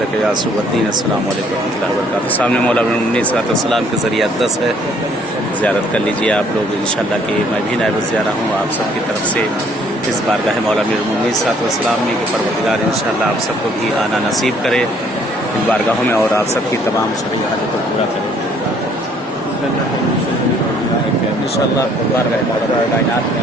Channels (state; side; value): normal; both; correlation 0.62